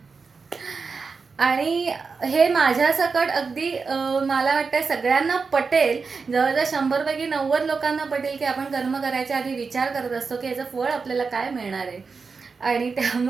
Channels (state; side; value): quieter; left; 4.9 dB